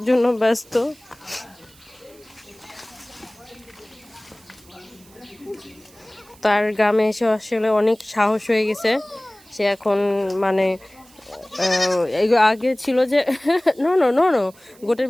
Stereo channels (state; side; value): noise; right; hiss, 26 dB below the sound